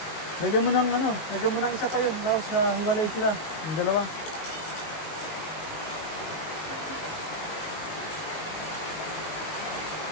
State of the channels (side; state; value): right; late; 19 ms